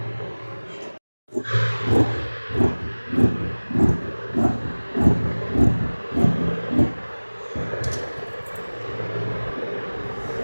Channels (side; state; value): both; inverted; correlation -1.00